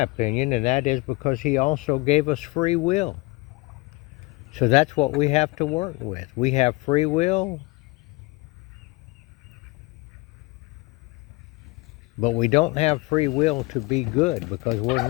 opinion, and that is because he also gave us free will. So that's what we have to work with. We have free will, but we don't have free will to be good because we're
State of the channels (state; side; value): quieter; right; 23.7 dB